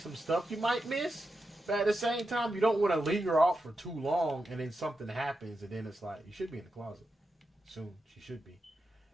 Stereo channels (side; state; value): both; normal; correlation 0.88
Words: stuff you might miss. But at the same time, you don't want to linger off for too long and then something happens and then it's like, you should be in the closet. Soon, she should be.